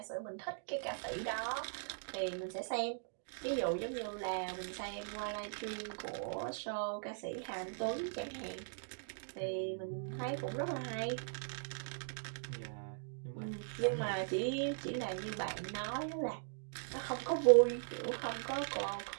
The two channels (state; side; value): silent; left; digital silence